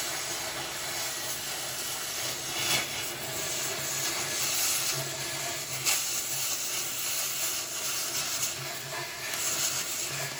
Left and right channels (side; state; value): both; identical; correlation 1.00